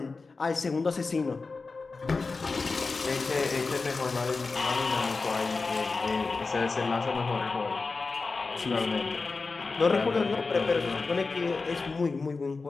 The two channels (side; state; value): right; quieter; 4.1 dB